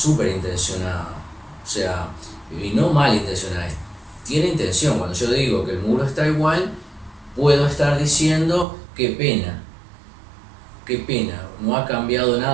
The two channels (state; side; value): drops out; left; at 8.7 s